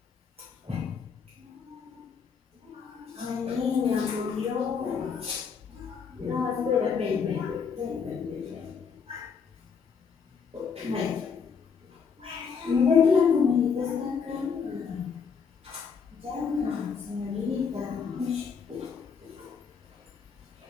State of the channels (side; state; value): right; quieter; 6.1 dB